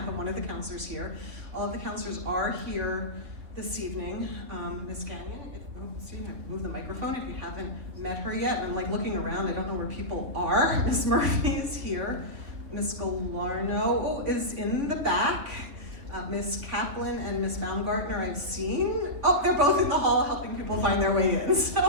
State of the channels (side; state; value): left; late; 3.5 ms